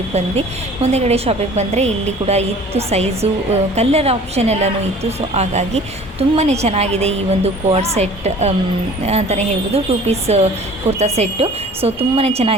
ಬಂದ್ವಿ. ಮುಂದೆಗಡೆ ಶಾಪಿಗೆ ಬಂದರೆ ಇಲ್ಲಿ ಕೂಡ ಇತ್ತು ಸೈಜು, ಕಲರ್ ಆಪ್ಷನ್ ಎಲ್ಲನೂ ಇತ್ತು. ಸೊ ಹಾಗಾಗಿ ತುಂಬಾ ಚೆನ್ನಾಗಿದೆ ಈ ಒಂದು ಕೋಡ್ ಸೆಟ್ ಅಂತಲೇ ಹೇಳ್ಬೋದು. 2 ಪೀಸ್ ಕುರ್ತಾ ಸೆಟ್ಟು. ಸೊ ತುಂಬಾ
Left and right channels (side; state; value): both; normal; correlation 0.47